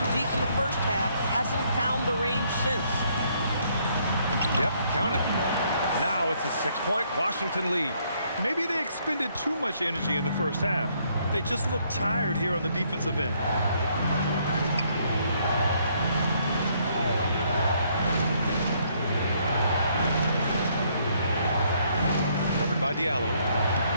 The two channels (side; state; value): both; inverted; correlation -0.69